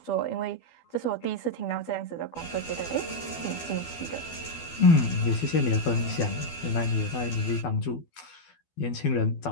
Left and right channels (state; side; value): late; right; 12 ms